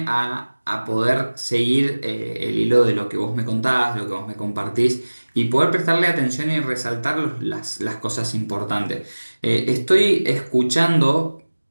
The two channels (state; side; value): inverted; both; correlation -1.00